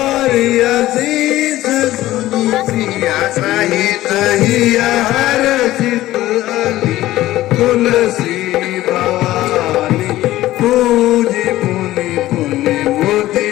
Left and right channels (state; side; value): quieter; right; 15.6 dB